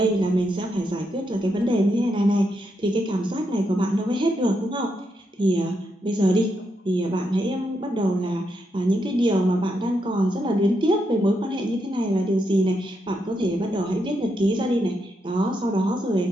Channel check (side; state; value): both; normal; correlation 0.81